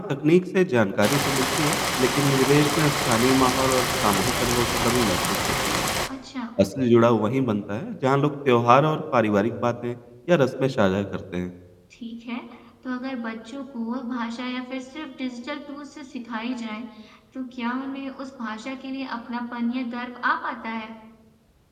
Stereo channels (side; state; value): both; identical; correlation 1.00